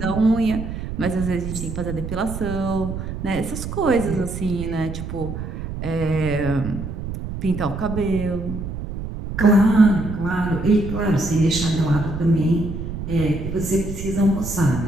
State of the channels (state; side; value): noise; right; rumble, 7 dB below the sound